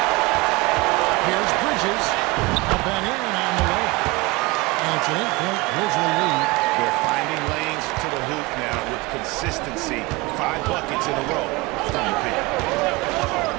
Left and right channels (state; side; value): quieter; left; 23.3 dB